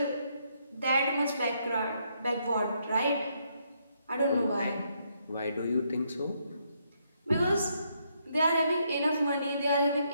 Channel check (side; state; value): both; inverted; correlation -0.75